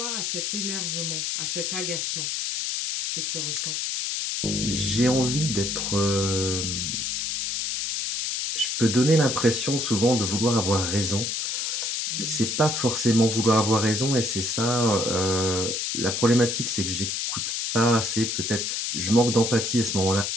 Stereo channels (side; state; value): left; noise; hiss, 1 dB below the sound